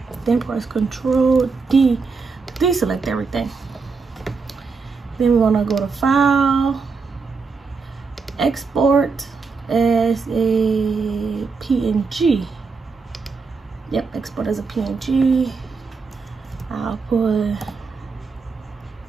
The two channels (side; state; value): left; quieter; 4.7 dB